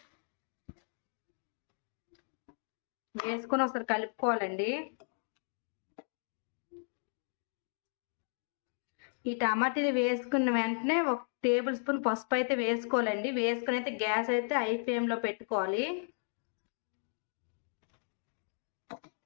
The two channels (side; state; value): right; silent; digital silence